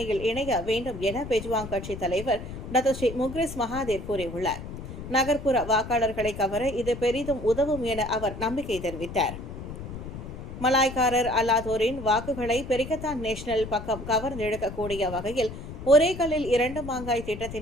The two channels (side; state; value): left; noise; rumble, 10 dB below the sound